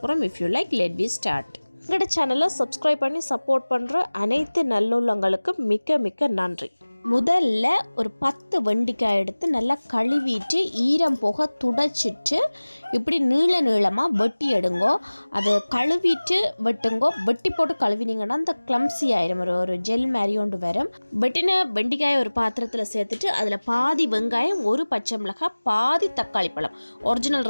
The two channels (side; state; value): both; inverted; correlation -1.00